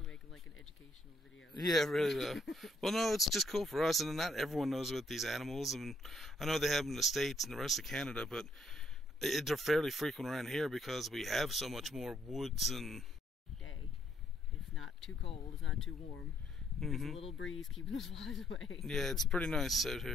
making like an educational video. Yeah, really though. Well, no, it's just cool for us, and not everyone knows about these animals. And I know they have them in the States and the rest of Canada, but they're fairly frequent around here because we have so much more woods and... Day. It's not too cold, it's not too warm. There's a little breeze keeping the flies away. Yeah, it's pretty nice out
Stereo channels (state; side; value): normal; both; correlation 0.70